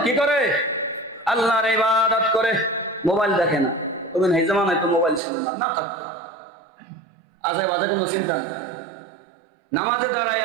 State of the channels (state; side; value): drops out; left; at 5.2 s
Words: কি করে? আল্লাহর ইবাদত করে, মোবাইল দেখে না। তবে এই জামানায় তো মোবাইল ছিল না, না থাকতো আজে বাজে কোনো চিন্তা নেই, নামাজে দাঁড়ায়